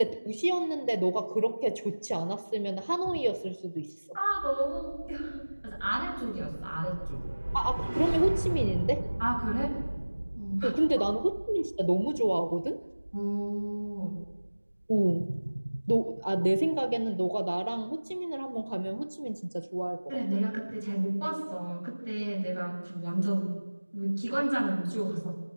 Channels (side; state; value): both; inverted; correlation -1.00